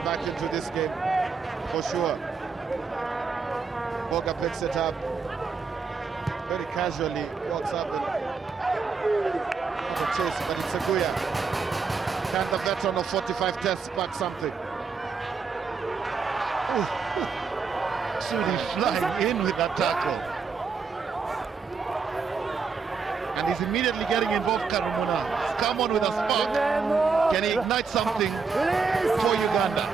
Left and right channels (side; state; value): left; quieter; 5.1 dB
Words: back into this game, for sure. Boga picks it up very casually, walks up and not a chase, but it's Seguya. Can the veteran of 45 tests back something? Sudi flying in with that tackle. And he's immediately getting involved, Karumuna. He's come on with a spark. Can he ignite something for Uganda?